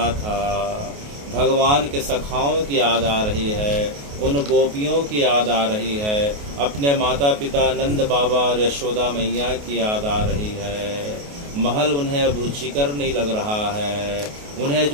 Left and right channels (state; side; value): late; left; 28 ms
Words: था भगवान के सखाओं की याद आ रही है, उन गोपियों की याद आ रही है, अपने माता पिता नंद बाबा और यशोदा मैया की याद आ रही है। महल उन्हें अब रुचिकर नहीं लग रहा है, उन्हें